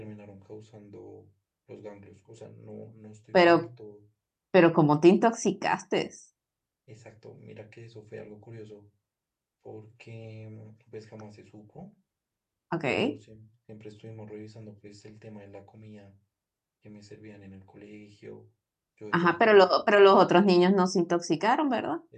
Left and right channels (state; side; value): identical; both; correlation 1.00